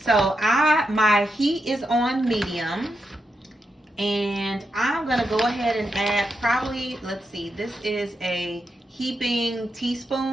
So my heat is on medium. And I'm going to go ahead and add probably, let's see, this is a heaping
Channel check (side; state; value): both; normal; correlation 0.85